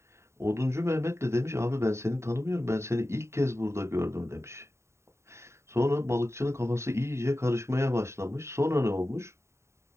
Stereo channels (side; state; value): left; late; 0.13 ms